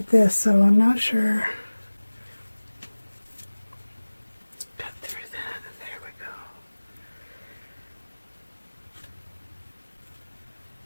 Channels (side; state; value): both; inverted; correlation -1.00